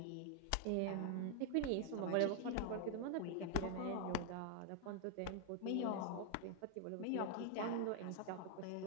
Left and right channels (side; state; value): both; different; correlation 0.00